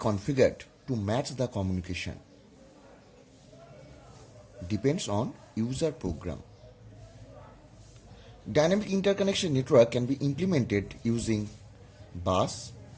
to match the communication. Depends on user program. Dynamic interconnection network can be implemented using bus,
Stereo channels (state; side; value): identical; both; correlation 1.00